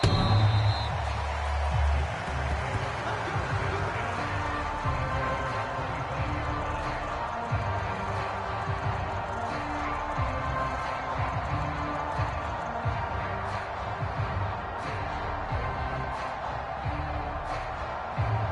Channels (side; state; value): both; identical; correlation 1.00